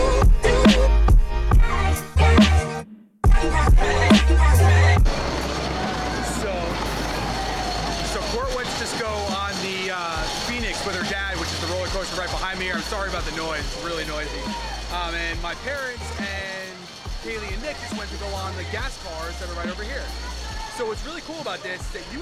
So Court went to just go on the Phoenix with her dad, which is the roller coaster right behind me here. I'm sorry about the noise, it's really noisy. And my parents and Kaylee and Nick just went to go on the gas cars that are right over here. So what's really cool about this is that you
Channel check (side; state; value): both; identical; correlation 1.00